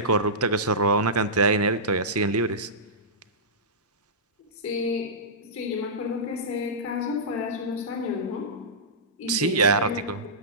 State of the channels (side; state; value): both; normal; correlation -0.18